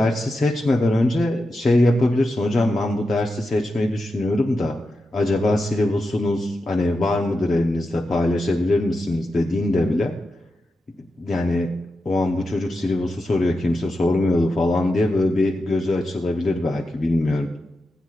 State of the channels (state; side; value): normal; both; correlation 0.89